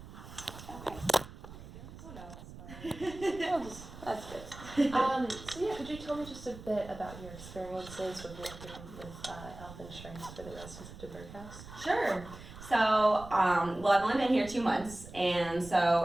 Okay. Oh no. That's good. So yeah, could you tell me just a bit about your experiences with working with health insurance for the residents of DuBourg House? Sure. So, well, I've only been here 2 months, and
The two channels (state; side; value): noise; right; rumble, 15 dB below the sound